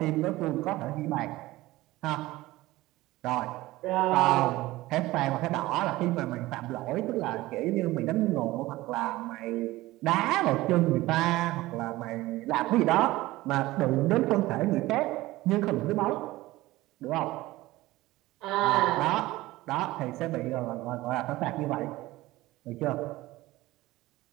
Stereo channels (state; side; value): quieter; left; 18.2 dB